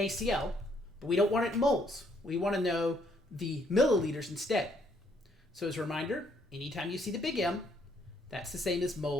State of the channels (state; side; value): normal; both; correlation 0.68